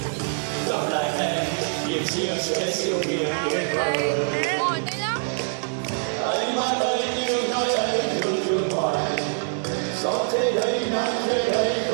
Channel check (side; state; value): left; silent; digital silence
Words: gặp lại em niềm chia sẻ siêu miền tuyệt vời. Anh mãi đây yêu nói anh thương thương hoài, gió thế đây nắng thế đây